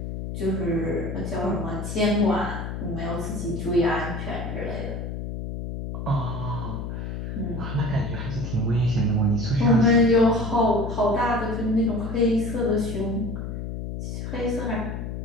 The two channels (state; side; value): noise; left; hum, 6 dB below the sound